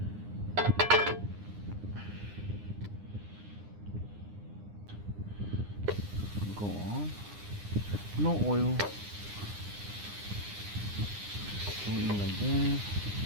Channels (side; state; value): left; late; 9.8 ms